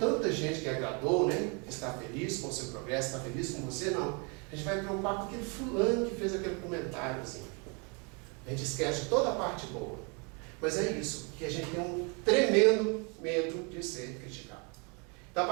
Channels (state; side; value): quieter; left; 33.6 dB